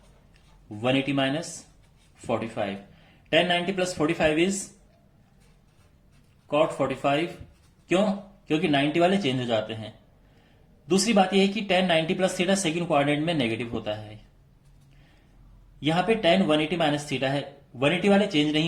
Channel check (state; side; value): identical; both; correlation 1.00